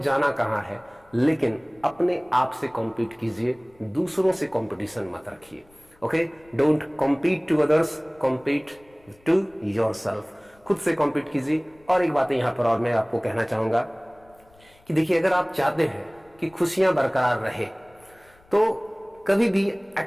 कहाँ है, लेकिन अपने आप से कॉम्पीट कीजिए, दूसरों से कंपटीशन मत रखिए। Okay, don't compete to others, compete to yourself. खुद से कॉम्पीट कीजिए। और एक बात यहाँ पर और मैं आपको कहना चाहूंगा कि देखिए, अगर आप चाहते हैं कि खुशियां बरकरार रहे, तो कभी भी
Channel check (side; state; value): left; noise; rumble, 30 dB below the sound